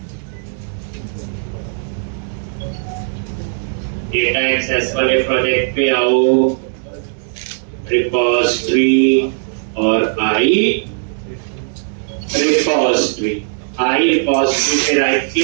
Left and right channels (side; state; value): left; silent; digital silence